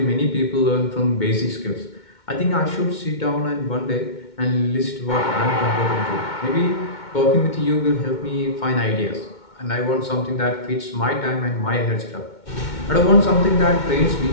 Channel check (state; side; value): late; right; 2.2 ms